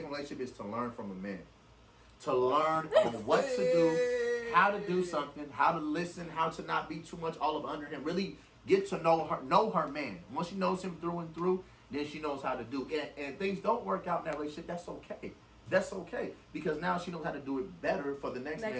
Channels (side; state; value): both; identical; correlation 1.00